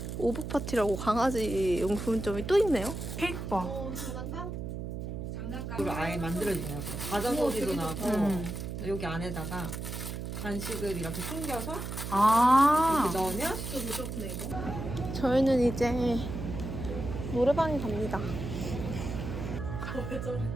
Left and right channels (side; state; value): right; noise; hum, 6 dB below the sound